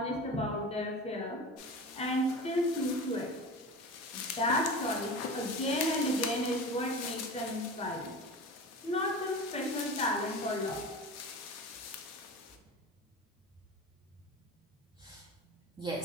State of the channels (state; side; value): normal; both; correlation 0.31